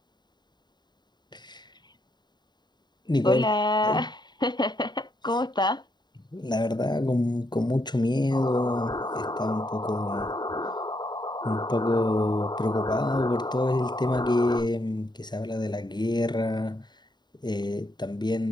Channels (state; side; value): late; right; 0.21 ms